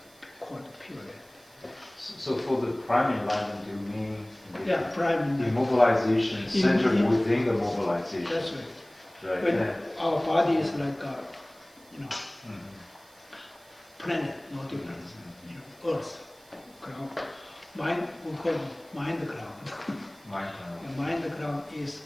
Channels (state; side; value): noise; right; hiss, 27 dB below the sound